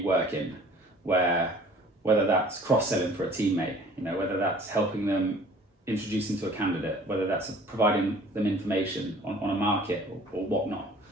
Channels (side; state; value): both; normal; correlation 0.50